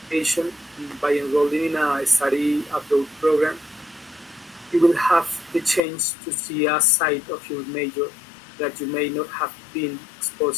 by enrolling in a study abroad program. You will have the chance to see a side of your major that you may not have been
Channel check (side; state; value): right; drops out; at 5.8 s